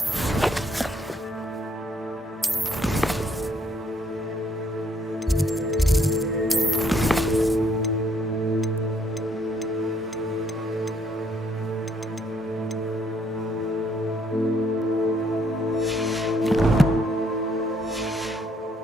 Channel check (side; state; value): both; normal; correlation 0.68